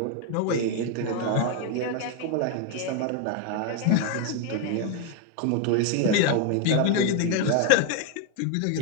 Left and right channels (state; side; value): different; both; correlation 0.01